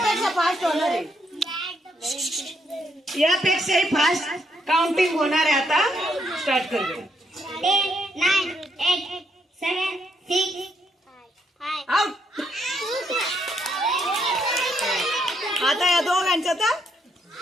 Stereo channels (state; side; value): normal; both; correlation 0.75